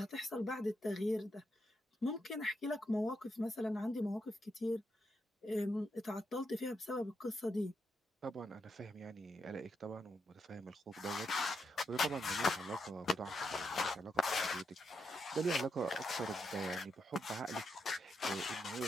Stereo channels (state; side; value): normal; both; correlation 0.82